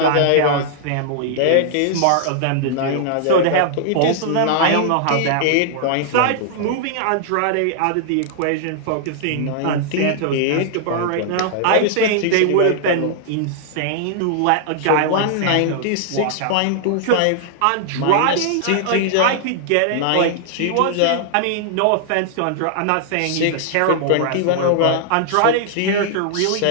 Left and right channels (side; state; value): both; different; correlation -0.01